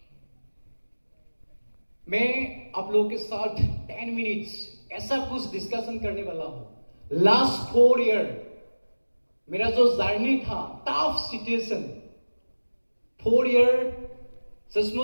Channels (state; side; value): inverted; both; correlation -1.00